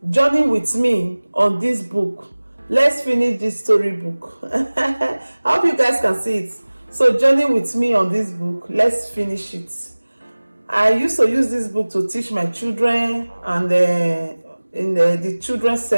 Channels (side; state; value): both; inverted; correlation -1.00